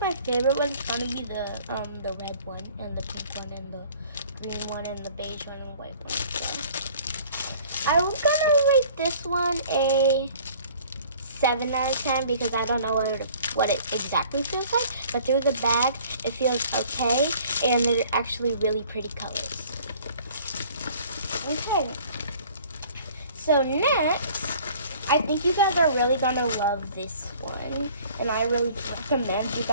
my favorite one's gonna be the red one, and the pink one, and the green one, and the beige one, and the white one. So I was gonna rate this one a 7 out of 10 because I don't know what it exactly feels like, but through the bag it feels okay, and they're actually really pretty colors. Okay, so next, I think you guys are really gonna love this one, and I really recommend you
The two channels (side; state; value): both; inverted; correlation -0.52